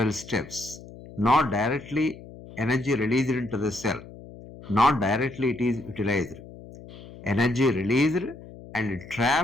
steps, not directly energy released into the cell, not directly it is utilized. Energy released and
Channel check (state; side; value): noise; left; hum, 17 dB below the sound